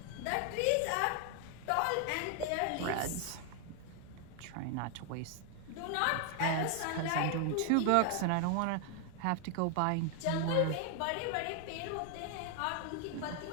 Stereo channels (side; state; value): both; different; correlation 0.00